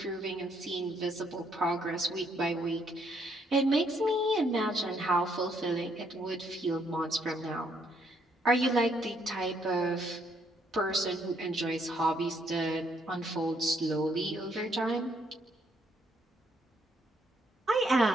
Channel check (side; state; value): both; normal; correlation 0.71